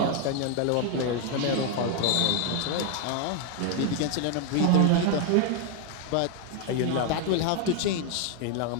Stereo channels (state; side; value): different; both; correlation 0.01